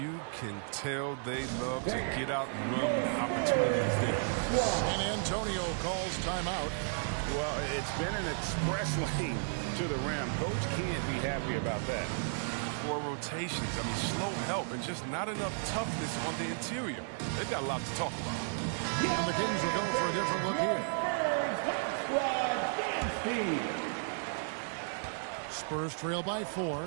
can tell they love to get out and run when the opportunity is there. San Antonio calls timeout. Well, it's been an express lane to the rim. Coach can't be happy about that. 4 rotations. I mean, slow help and just not enough toughness on the interior. They've got a lot to talk about. And the Kings will go for a different look here. Spurs trail by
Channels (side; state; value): left; silent; 55 dB below the other